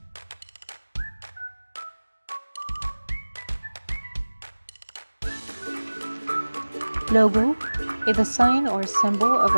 Logo is a sign or symbol of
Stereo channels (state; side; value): inverted; both; correlation -1.00